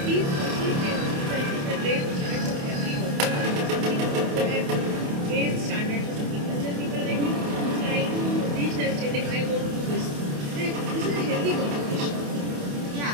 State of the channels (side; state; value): left; late; 28 ms